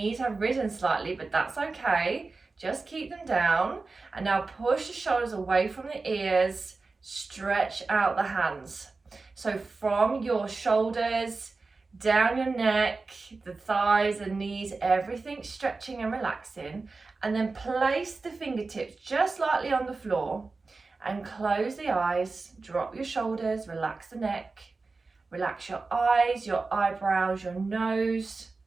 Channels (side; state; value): left; quieter; 3.9 dB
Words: have risen slightly, but that's okay. Just keep them down. And now push the shoulders away from the ears, stretch out the hands. So from your shoulders, down your neck, the thighs, the knees, everything stretching and relaxing. And then place the fingertips just lightly on the floor and close the eyes, drop your shoulders, relax the neck. Relax your eyes, your eyebrows, your nose.